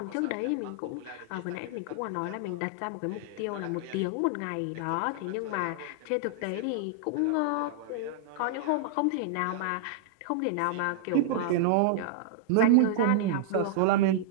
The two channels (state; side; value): different; both; correlation -0.01